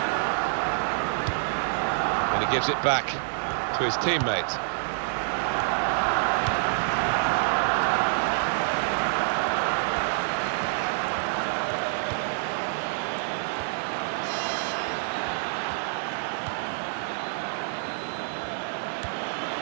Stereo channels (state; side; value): silent; left; digital silence